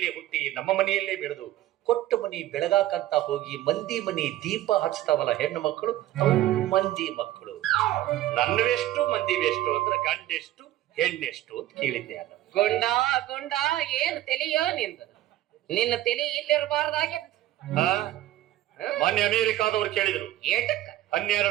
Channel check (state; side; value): quieter; left; 14.5 dB